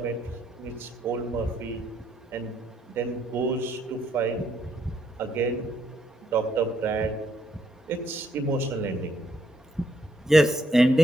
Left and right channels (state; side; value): normal; both; correlation 0.72